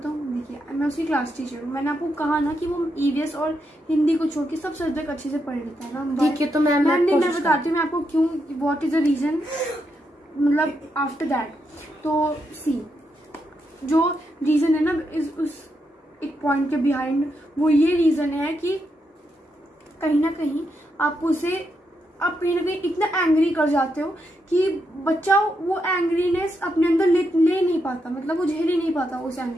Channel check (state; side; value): normal; both; correlation 0.82